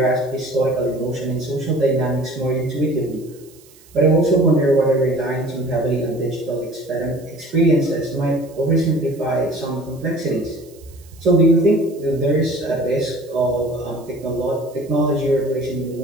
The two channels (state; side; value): noise; right; hiss, 26 dB below the sound